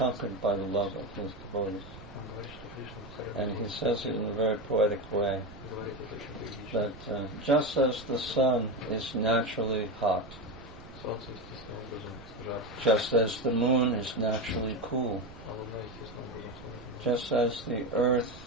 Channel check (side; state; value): right; noise; rumble, 17 dB below the sound